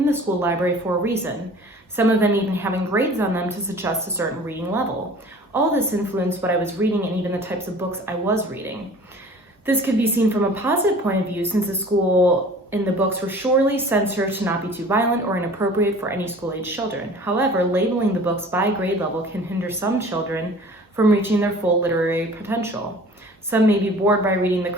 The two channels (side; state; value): both; normal; correlation 0.46